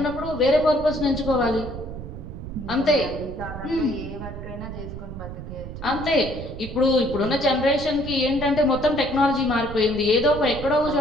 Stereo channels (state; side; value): noise; right; rumble, 10 dB below the sound